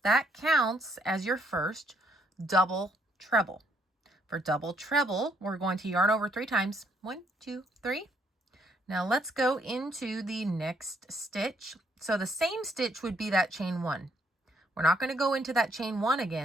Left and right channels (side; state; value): both; normal; correlation 0.70